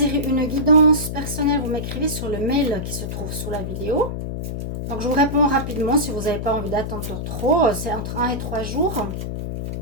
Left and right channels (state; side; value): noise; left; hum, 5 dB below the sound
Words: une guidance personnelle, vous m'écrivez sur le mail qui se trouve sous la vidéo. Donc je vous réponds rapidement si vous n'avez pas envie d'attendre trop. C'est entre 1 et 3 jours.